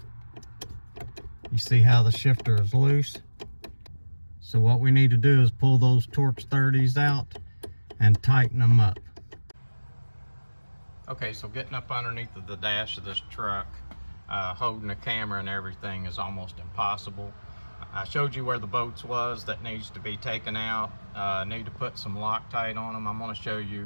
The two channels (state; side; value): inverted; both; correlation -1.00